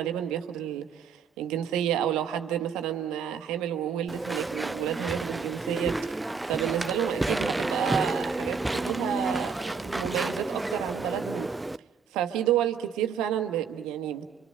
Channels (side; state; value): left; quieter; 6.3 dB